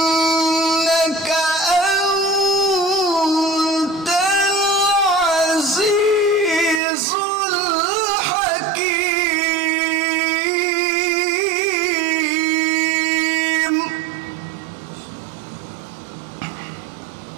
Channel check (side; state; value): left; drops out; at 6.8 s